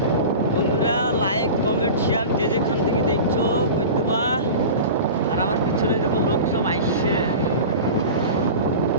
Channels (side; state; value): both; inverted; correlation -0.33